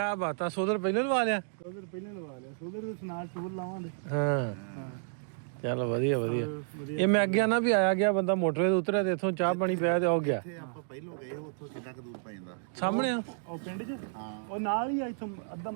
ਬਾਤਾਂ, ਸੋਦਰ ਪਹਿਲਾਂ ਲਵਾ ਲਿਆ? ਸੋਦਰ ਪਹਿਲਾਂ ਲਵਾ ਲਿਆ, ਸੋਦਰ ਦੇ ਸਨਾਰ ਟੂਰ ਲਾਵਾਂਗੇ। ਹਾਂ ਚਲ ਵਧੀਆ ਵਧੀਆ। ਇਹ ਮੈਂ ਅੱਗੇ ਨਾ ਵੀ ਆਇਆ ਗਿਆ ਬੰਦਾ ਮੋਟਰਵੇ ਤੇ ਉਤਰਿਆ ਤੇ ਇੱਥੋਂ ਚਾਹ ਪਾਣੀ ਪਿਆ ਤੇ ਉਹ ਗਿਆ। ਆਪਾਂ ਪਹਿਲੋਂ ਗਏ ਉੱਥੋਂ ਕਿੰਨਾ ਕੁ ਦੂਰ ਪੈ ਜਾਂਦਾ? ਸਾਹਮਣੇ ਆ ਉਹ ਪਿੰਡ 'ਚ ਉਹ ਨਾਲ ਹੀ ਆ, ਇੱਥੋਂ ਅੱਧਾ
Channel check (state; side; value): silent; left; digital silence